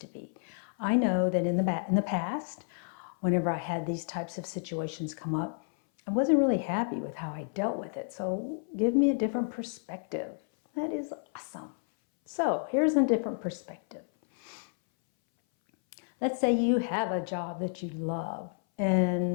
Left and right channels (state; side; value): silent; right; 57 dB below the other